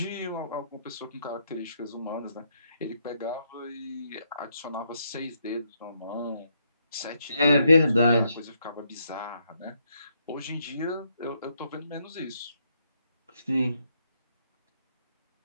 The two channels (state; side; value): inverted; both; correlation -0.76